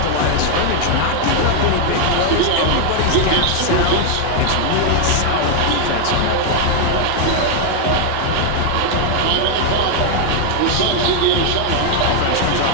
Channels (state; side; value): different; both; correlation 0.00